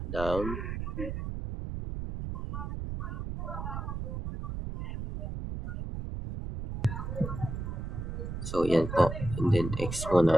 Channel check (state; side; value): noise; right; rumble, 5 dB below the sound